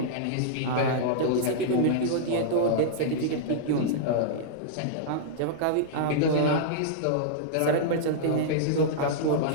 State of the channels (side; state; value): both; different; correlation -0.02